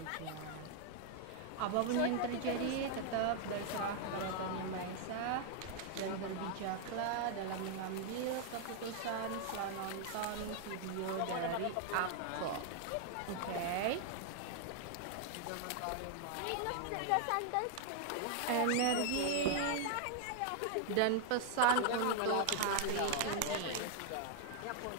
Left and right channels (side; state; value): both; different; correlation 0.00